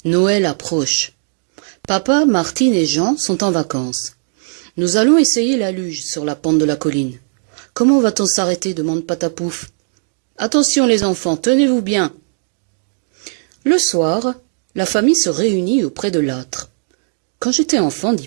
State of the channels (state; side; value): silent; left; digital silence